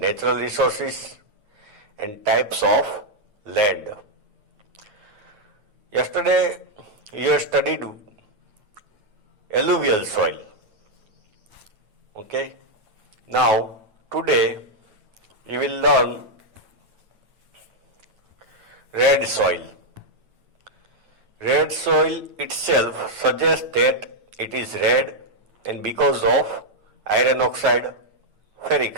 Resources and Types of Land. Yesterday you have studied alluvial soil. Okay. Now today you will learn red soil. Red soil itself suggests that it is red and because of iron oxide,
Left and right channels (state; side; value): late; left; 9.5 ms